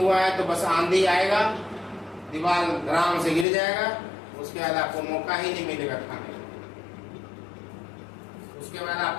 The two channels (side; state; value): right; drops out; at 3.5 s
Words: है तो बस आंधी आएगा, दीवार आराम से गिर जाएगा, उसके बाद आपको मौका ही नहीं मिलेगा खाने का। उसके बाद